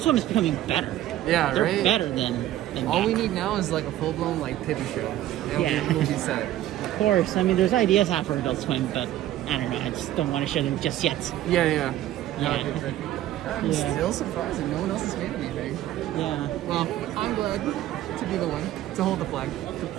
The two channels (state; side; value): quieter; left; 13.6 dB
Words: Swim is becoming better. Yeah, They're right? better than all back. we need now is like a full-blown like TV show. And we'll be set. Of course, I mean, there's ideas out for Adult Swim, but I don't know, I just don't want to show them just yet. Yeah. Yeah. I'm still surprised that no one else has made anything. Yeah. Well, I'm glad to be the one to hold the flag. To